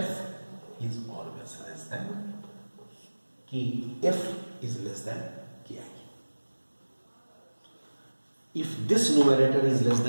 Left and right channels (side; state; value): both; inverted; correlation -1.00